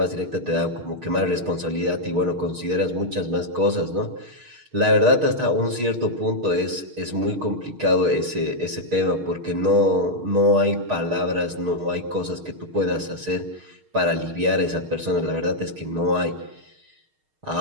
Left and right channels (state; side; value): late; left; 6.5 ms